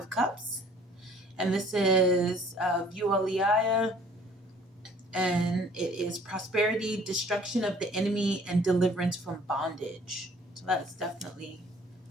Cups. And this is Vualiaya. And it is prosperity, destruction of the enemy, and deliverance from bondage. So that's definitely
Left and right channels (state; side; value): normal; both; correlation 0.54